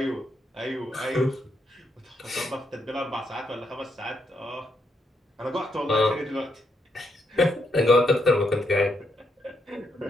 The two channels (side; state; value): both; normal; correlation 0.78